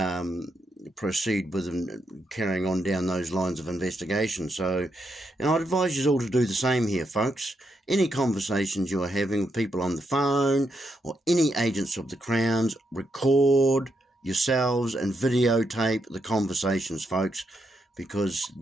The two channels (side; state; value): both; normal; correlation 0.81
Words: proceed with carrying on down those lines of investigation. So, and I'd advise you all to do the same here, folks. Any conversations you are having with people on the phone or any agents of the Crown's, record yourselves and videotape the conversations, folks, because,